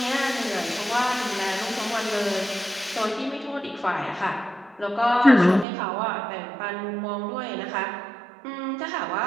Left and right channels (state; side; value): drops out; left; at 5.7 s